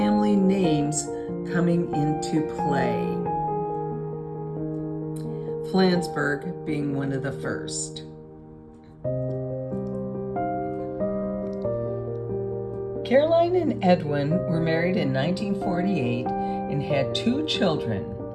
names coming into play, Flansburgh being one of the first. Caroline and Edwin were married in 1948 and had 2 children.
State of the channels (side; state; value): both; identical; correlation 1.00